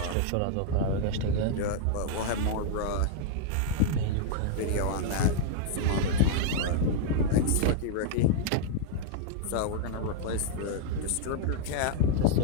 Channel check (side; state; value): both; different; correlation -0.01